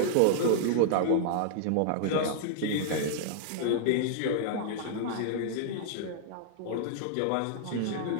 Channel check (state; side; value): different; both; correlation -0.01